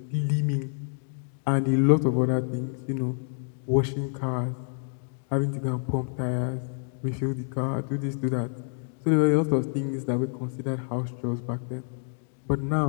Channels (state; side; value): silent; right; 59 dB below the other